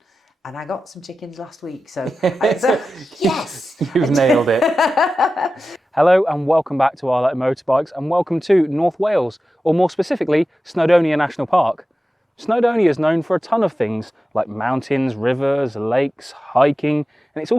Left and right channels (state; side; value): normal; both; correlation 0.93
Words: and I got some chickens last week, so yes! You've nailed it. Hello and welcome back to Our Letter Motorbikes and welcome to North Wales, or more specifically, Snowdonia National Park. Snowdonia is known for a ton of things like mountains, rivers, lakes, hiking, and it's